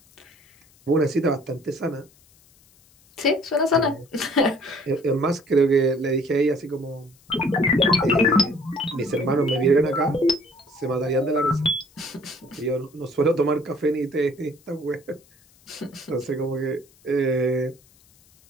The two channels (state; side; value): noise; left; hiss, 30 dB below the sound